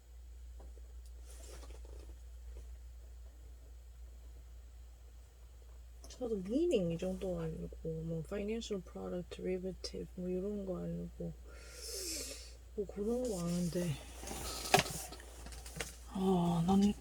저도 meaning 이 정도 아니고 뭐 financial product derivative 뭐 이런 거 아니고 뭐 그런 거 아는데 난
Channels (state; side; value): identical; both; correlation 1.00